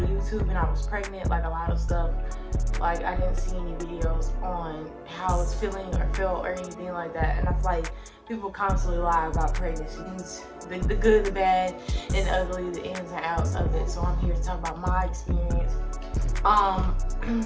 YouTube and I was pregnant, like a lot of stuff, like I didn't see any videos on how I was feeling or felt or anything like that. And I feel like people constantly lie about pregnancy, the good, the bad, and the ugly, the ins and outs of it. So I'm here to talk about my experience.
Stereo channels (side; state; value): both; identical; correlation 1.00